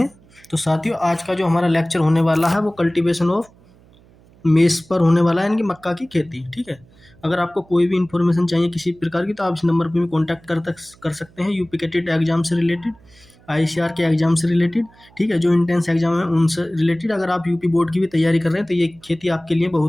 तो साथियों, आज का जो हमारा लेक्चर होने वाला है वो कल्टीवेशन ऑफ मेस पर होने वाला है, यानी कि मक्का की खेती। ठीक है, अगर आपको कोई भी इन्फॉर्मेशन चाहिए किसी प्रकार की तो आप इस नंबर पर भी कॉन्टैक्ट कर सकते हैं। यूपी के टेट एग्जाम से रिलेटेड, आईसीआर के एग्जाम से रिलेटेड, ठीक है, जो इंटेंस एग्जाम है उनसे रिलेटेड। अगर आप यूपी बोर्ड की भी तैयारी कर रहे हैं तो ये खेती आपके लिए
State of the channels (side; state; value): right; noise; hum, 28 dB below the sound